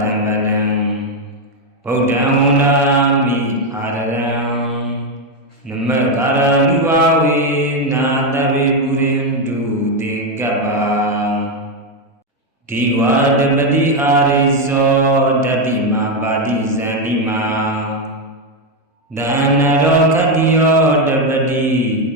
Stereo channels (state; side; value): normal; both; correlation 0.05